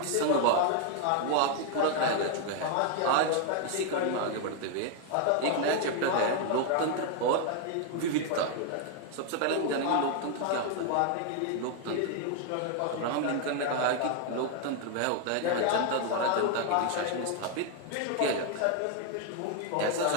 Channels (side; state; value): both; different; correlation 0.00